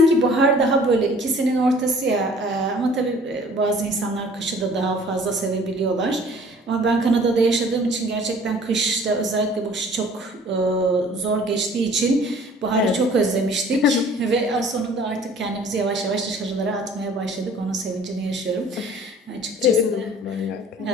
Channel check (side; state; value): both; normal; correlation 0.51